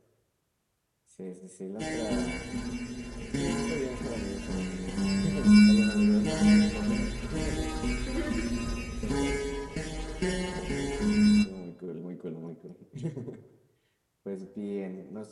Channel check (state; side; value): identical; both; correlation 1.00